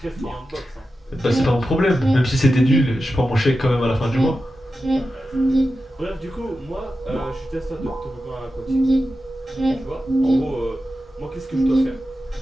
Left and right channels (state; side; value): normal; both; correlation 0.92